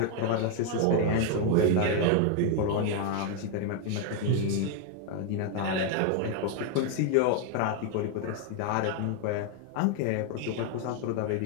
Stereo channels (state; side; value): different; both; correlation 0.01